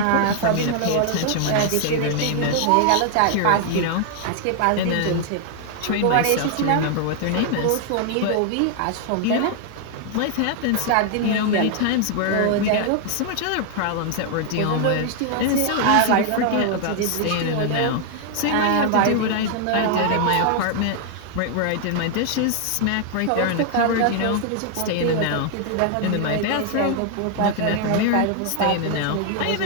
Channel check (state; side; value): different; both; correlation 0.00